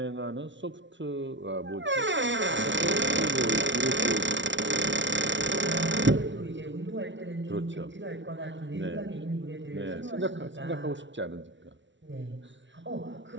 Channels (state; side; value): late; left; 0.54 ms